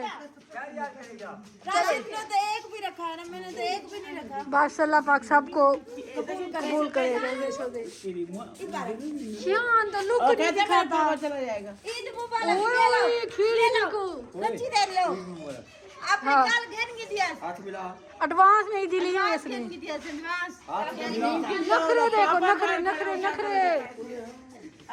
ने तो एक भी रखा है ना, मैंने तो एक भी नहीं रखा। बस अल्लाह पाक सबको कबूल करे। शान तो लुक नहीं दिखाता। ईद मुबारक। ओए खीर देखो सच्ची दे लो। आपने हाँ। कल घेर के दिया। एडवांस में ही दिली है इसने। घेर के दिया एडवांस। नखरे देखो नखरे।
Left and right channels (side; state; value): both; identical; correlation 1.00